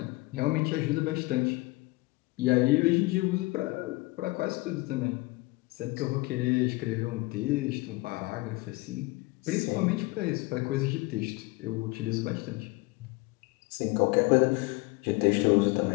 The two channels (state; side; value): quieter; right; 23.0 dB